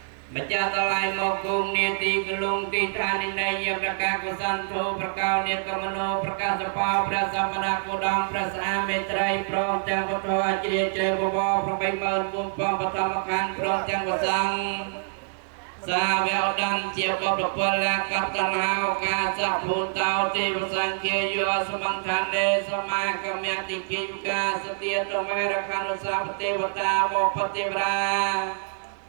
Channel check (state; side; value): silent; left; digital silence